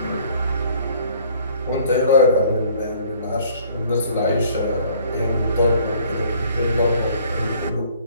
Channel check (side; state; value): both; inverted; correlation -0.57